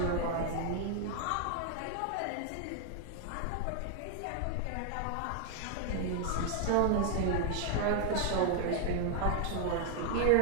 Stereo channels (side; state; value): both; different; correlation 0.00